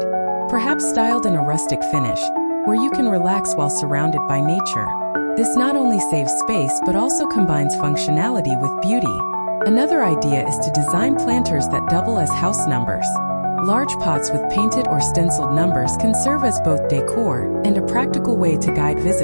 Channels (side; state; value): both; inverted; correlation -1.00